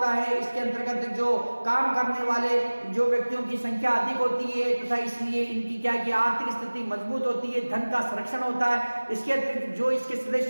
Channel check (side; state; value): both; inverted; correlation -1.00